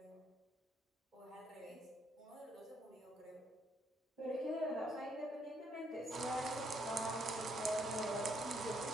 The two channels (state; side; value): normal; both; correlation 0.72